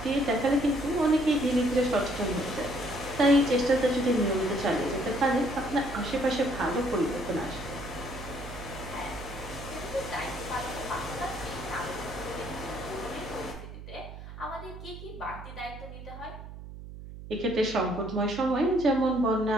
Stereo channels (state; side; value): noise; right; hum, 13 dB below the sound